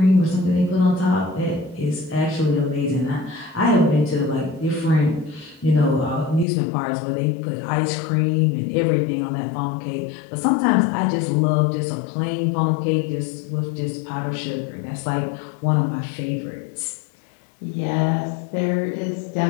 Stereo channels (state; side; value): drops out; right; at 6.5 s